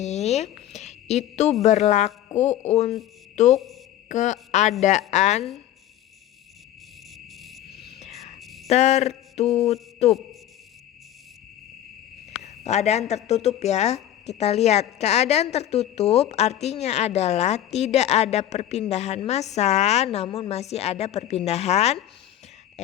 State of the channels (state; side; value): quieter; right; 12.1 dB